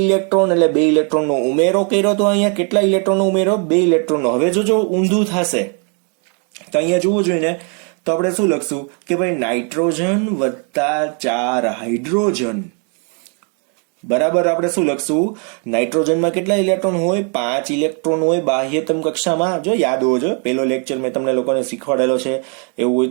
ઇલેક્ટ્રોન, એટલે 2 ઇલેક્ટ્રોનનો ઉમેરો કર્યો. તો અહીંયા કેટલા ઇલેક્ટ્રોનનો ઉમેરો? 2 ઇલેક્ટ્રોનનો. હવે જો ઊંધું થશે તો અહીંયા જોવું જોઈએ ને, તો આપણે શું લખશું કે ભાઈ નાઇટ્રોજન વત્તા 4 હાઇડ્રોજન. બરાબર, આપણે શું લખશું? નાઇટ્રોજનમાં કેટલા ઇલેક્ટ્રોન હોય? 5 ઇલેક્ટ્રોન હોય બાહ્યતમ કક્ષામાં. જો યાદ હોવો જોઈએ, પેલો લેક્ચર મેં તમને લોકોને શીખવાડેલો છે, એવું હોય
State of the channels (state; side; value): quieter; left; 38.7 dB